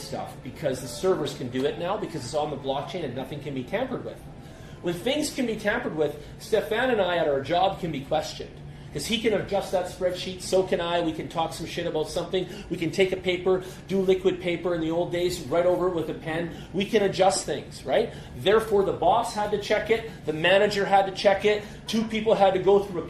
because the servers can do it now because it's on the blockchain and nothing can be tampered with. When things can be tampered with, Stefan and I at our job can be questioned. Because he can adjust that spreadsheet, so can I. We can talk some shit about something. We can take a paper, do liquid paper in the old days, write over it with a pen. We can adjust things, right? Therefore, the boss had to check it. The manager had to check it. 2 people had to go through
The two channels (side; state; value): both; identical; correlation 1.00